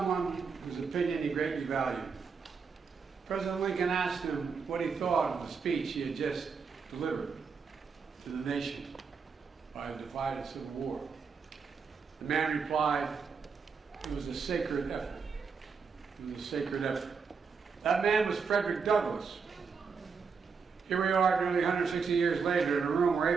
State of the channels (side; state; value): left; quieter; 5.5 dB